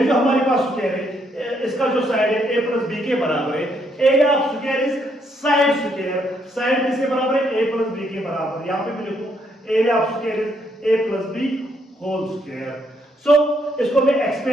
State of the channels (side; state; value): both; normal; correlation 0.73